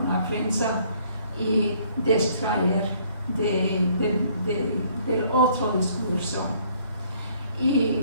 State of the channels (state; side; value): inverted; both; correlation -0.62